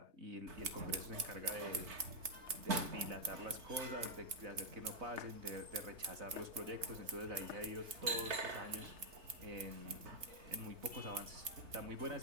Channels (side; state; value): left; late; 3.3 ms